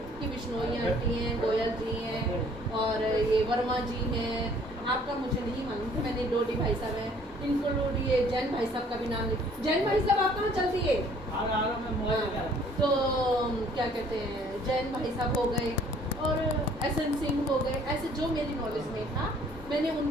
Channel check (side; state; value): both; normal; correlation 0.58